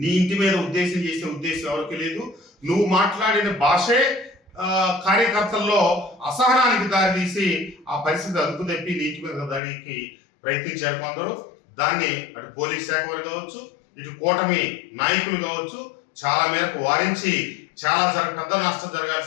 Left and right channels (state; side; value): drops out; right; at 9.6 s